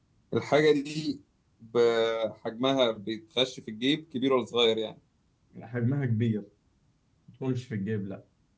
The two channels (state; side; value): identical; both; correlation 1.00